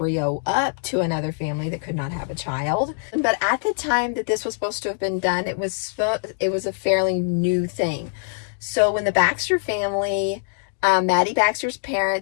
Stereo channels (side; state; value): right; silent; digital silence